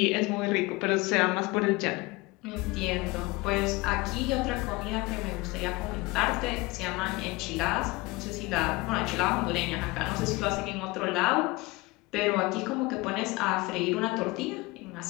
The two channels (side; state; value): right; quieter; 23.0 dB